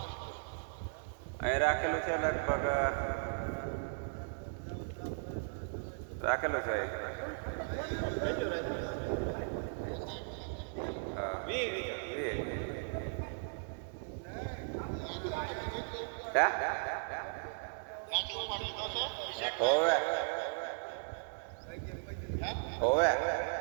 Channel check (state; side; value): silent; left; digital silence